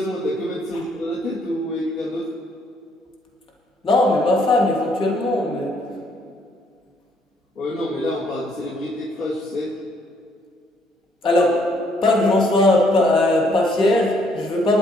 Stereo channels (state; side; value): normal; both; correlation 0.68